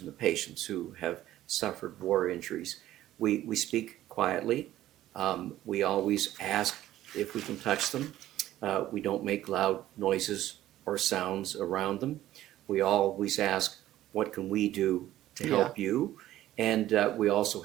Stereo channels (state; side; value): quieter; left; 13.9 dB